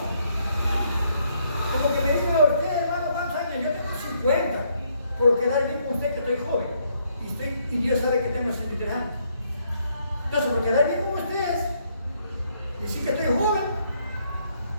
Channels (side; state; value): both; inverted; correlation -0.71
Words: Como que me digan a usted, hermano, ¿cuántos años? Yo tengo 50, por quedar bien con usted que estoy joven. Y Dios sabe que tengo 63 años. Entonces, por quedar bien con ustedes, decir que estoy joven,